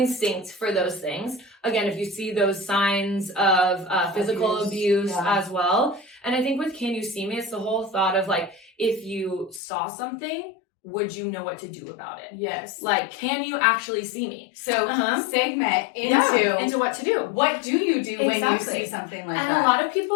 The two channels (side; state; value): right; drops out; at 9.6 s